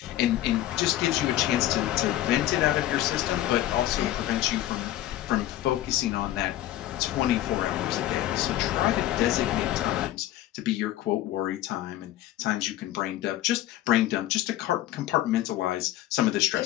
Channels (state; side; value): quieter; right; 14.0 dB